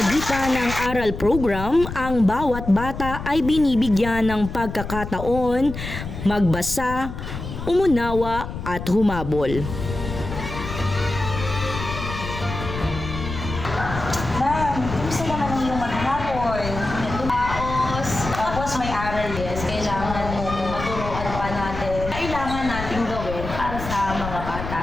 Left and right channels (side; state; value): left; noise; rumble, 8 dB below the sound